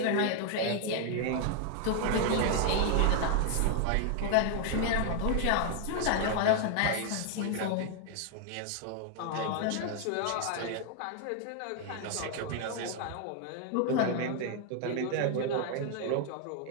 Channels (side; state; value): both; different; correlation 0.00